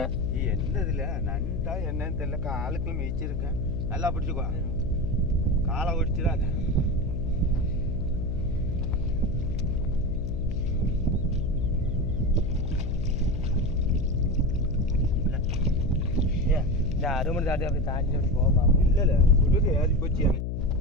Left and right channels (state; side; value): noise; left; hum, 2 dB below the sound